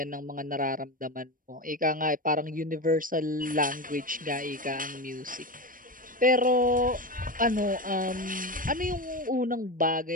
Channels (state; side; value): late; left; 0.40 ms